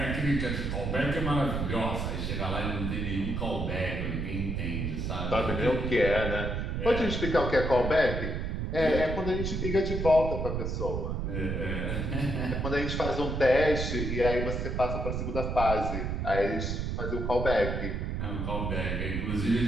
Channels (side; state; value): right; noise; rumble, 2 dB below the sound